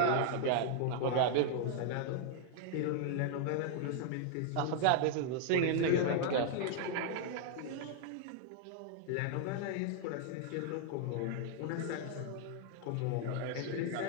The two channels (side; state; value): both; different; correlation 0.00